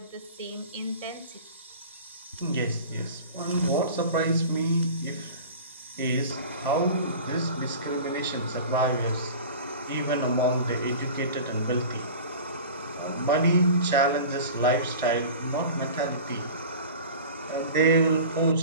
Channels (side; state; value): both; inverted; correlation -0.38